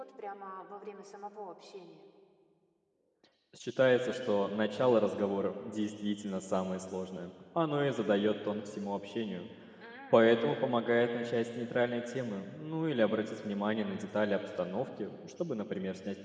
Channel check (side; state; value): both; identical; correlation 1.00